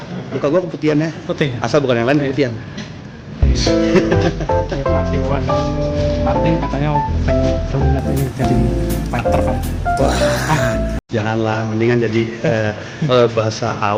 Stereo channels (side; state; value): both; identical; correlation 1.00